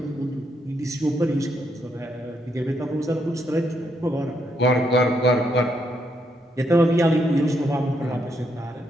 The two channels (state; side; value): normal; both; correlation 0.77